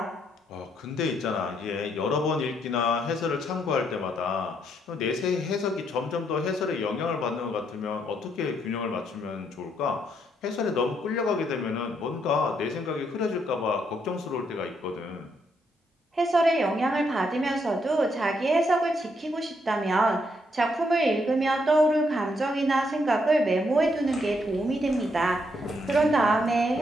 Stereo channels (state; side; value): normal; both; correlation 0.75